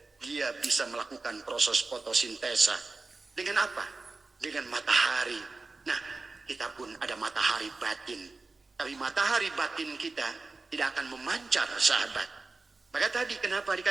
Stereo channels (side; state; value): left; quieter; 3.7 dB